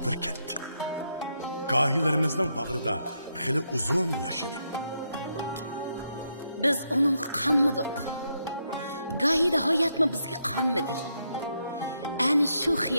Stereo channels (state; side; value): inverted; both; correlation -0.80